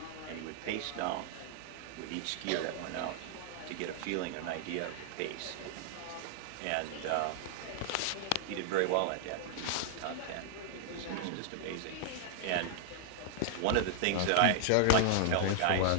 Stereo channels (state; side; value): different; both; correlation 0.00